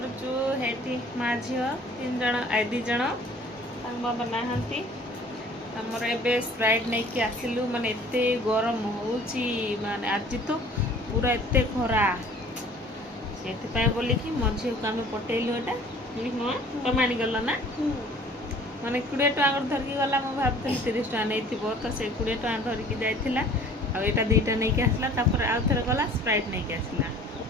हेटी माँ झी तीन जन दी जन बाबा नहांती आमर एबे स्प्राइट नहीं कि आसिलु माने एते गरम होउची माने आज तो पूरा एते खरा से बोलिकी मो झी को आम पटेलु एटा तुम आनीगल ना माने 20 टका धरिकी गला मु भाबुଥିଲି 30 टका नहीं तो से 20 टका धरिकी जाइथिला आ एटा दुईटा नहीं कि आसला तापर आउ थरे गला स्प्राइट नहीं कि आसला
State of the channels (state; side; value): normal; both; correlation 0.51